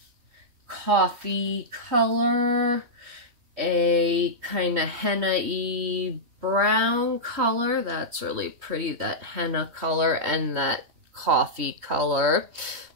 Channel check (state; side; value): late; left; 3.2 ms